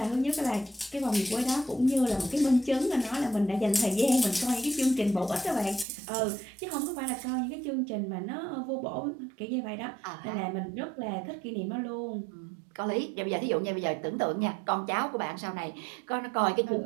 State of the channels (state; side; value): drops out; left; at 5.9 s